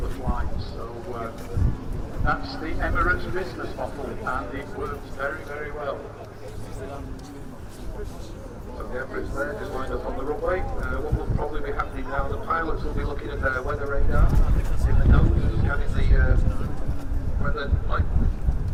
flights. So that's the Emirates business model, and it works very, very well. So the Emirates there, just lined up on the runway. What will probably be happening now, the pilots will be looking at their weather radar in the nose, scanning the weather, like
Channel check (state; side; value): identical; both; correlation 1.00